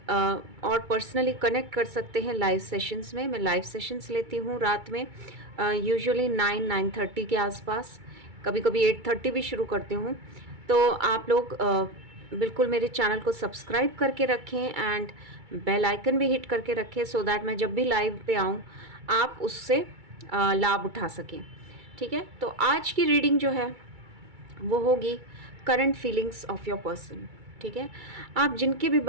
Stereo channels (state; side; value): late; left; 2.3 ms